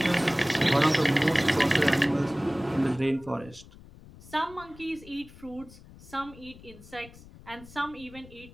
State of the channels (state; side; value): noise; left; rumble, 20 dB below the sound